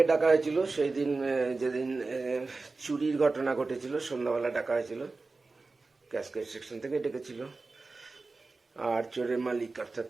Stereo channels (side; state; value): left; quieter; 3.7 dB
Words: ডাকা হয়েছিল সেই দিন, যেদিন চুরির ঘটনা ঘটেছিল, সন্ধ্যাবেলা ডাকা হয়েছিল, ক্যাশকেট সেকশন থেকে ডেকেছিল। আর চোরের মালিক অর্থাৎ